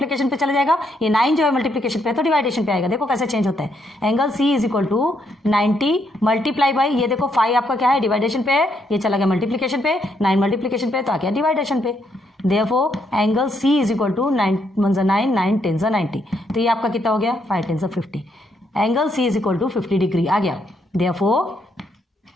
पे चला जाएगा, ये 9 जो है मल्टीप्लिकेशन पे है तो डिवाइडेशन पे आएगा। देखो कैसे चेंज होता है, angle C is equal to 90 multiply by, ये देखो 5 आपका क्या है डिवाइडेशन पे है, ये चला गया मल्टीप्लिकेशन पे, 9 मल्टीप्लिकेशन पे तो आ गया डिवाइडेशन पे। Therefore angle C is equal to 9 × 9 9 × 10 90, तो ये आपका कितना हो गया 5 × 10 50, angle C is equal to 50 degree आ गया। Therefore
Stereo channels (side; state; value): both; normal; correlation 0.75